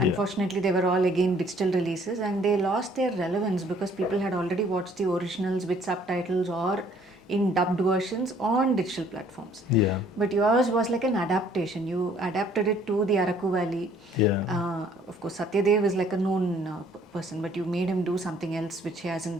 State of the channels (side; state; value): both; normal; correlation 0.60